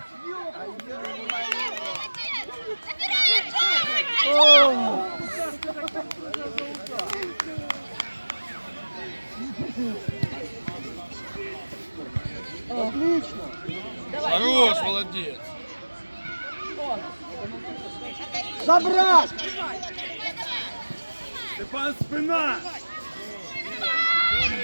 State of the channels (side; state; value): both; inverted; correlation -1.00